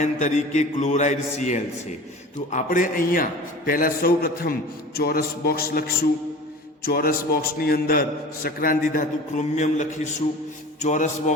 તરીકે ક્લોરાઇડ Cl છે. તો આપણે અહીંયા પહેલા સૌ પ્રથમ ચોરસ બોક્સ લખશું. ચોરસ બોક્સની અંદર સંક્રાંતિ ધાતુ ક્રોમિયમ લખીશું. ચોરસ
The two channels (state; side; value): normal; both; correlation 0.39